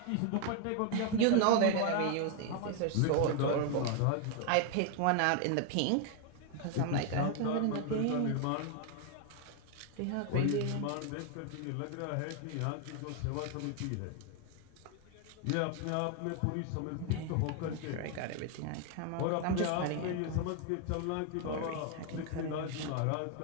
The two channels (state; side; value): different; both; correlation 0.00